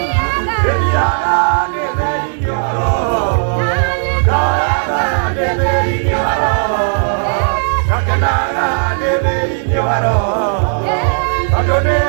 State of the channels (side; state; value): left; silent; 60 dB below the other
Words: ĩthiaga nĩ thĩinĩ wa roho, kaoyaga nĩ thĩinĩ wa roho, gakenaga nĩ thĩinĩ wa roho, tondũ